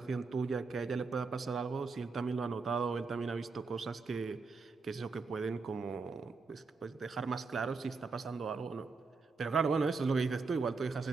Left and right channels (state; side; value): quieter; left; 4.4 dB